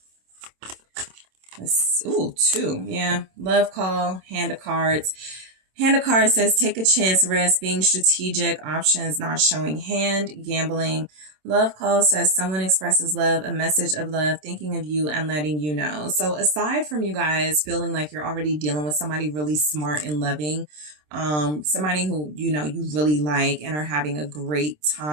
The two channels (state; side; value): late; left; 27 ms